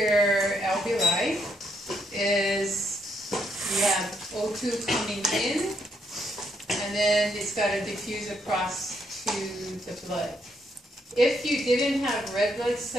alveoli is you have O2 coming in, and then it's got to diffuse across to the blood. If you didn't have red blood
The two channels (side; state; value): both; normal; correlation 0.75